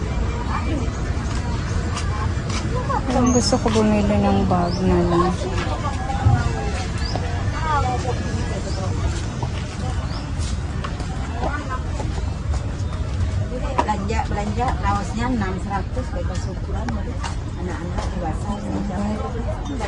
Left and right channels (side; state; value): both; identical; correlation 1.00